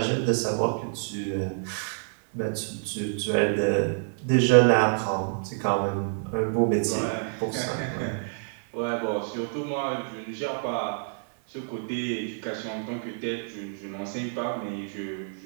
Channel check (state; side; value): silent; left; digital silence